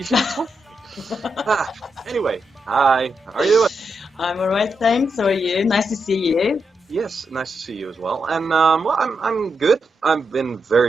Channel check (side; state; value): both; normal; correlation 0.84